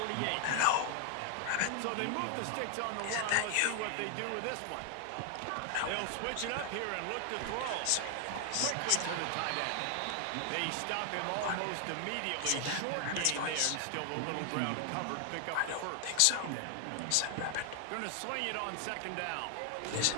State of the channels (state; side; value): different; both; correlation 0.00